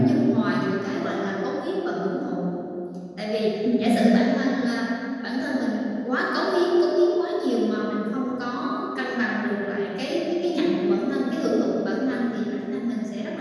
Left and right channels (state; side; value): identical; both; correlation 1.00